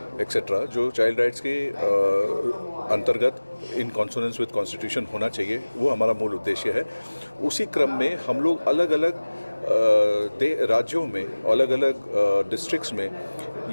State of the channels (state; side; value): inverted; both; correlation -1.00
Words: एक्सेट्रा जो चाइल्ड राइट्स के अंतर्गत इन कॉन्सोनेंस विद कॉन्स्टिट्यूशन होना चाहिए, वो हमारा मूल उद्देश्य है। उसी क्रम में हम लोग अलग अलग राज्यों में, अलग अलग डिस्ट्रिक्ट्स में